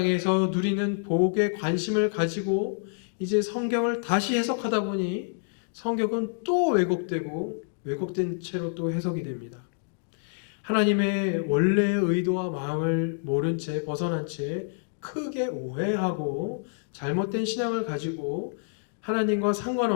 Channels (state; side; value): silent; right; digital silence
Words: 누리는 복에 관심을 가지고 이제 성경을 다시 해석하다 보니 성경은 또 왜곡되고 왜곡된 채로 또 해석이 됩니다. 하나님의 원래의 의도와 마음을 모른 채 벗어난 채 크게 오해하고 잘못된 신앙을 가지고 하나님과